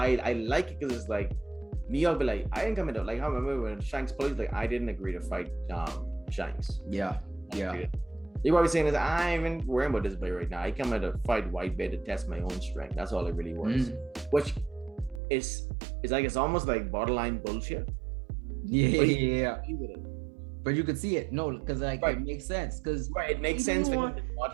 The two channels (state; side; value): drops out; left; at 15.2 s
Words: I like it, because it's like Mihawk be like, I didn't come into, like I remember when Shanks plays, like I didn't agree to fight Shanks. Yeah. You're probably saying this, I ain't even worrying about this boy right now. I come here to fight Whitebeard to test my own strength. That's all it really was. Which is like, it's almost like borderline bullshit. Yeah. But you could see it. No, because like it makes sense. Because it makes sense. He